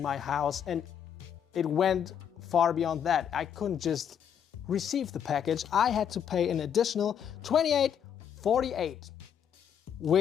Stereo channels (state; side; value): quieter; right; 8.5 dB